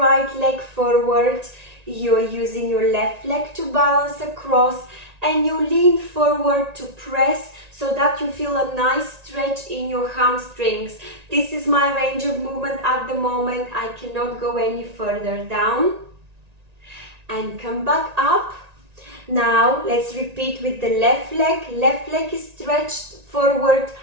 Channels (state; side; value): late; left; 1.9 ms